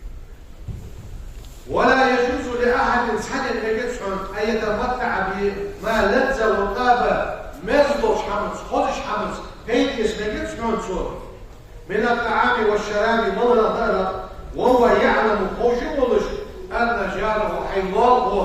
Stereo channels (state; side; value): identical; both; correlation 1.00